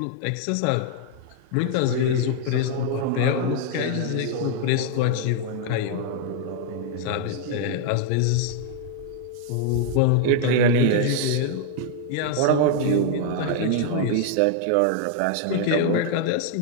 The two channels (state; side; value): different; both; correlation 0.00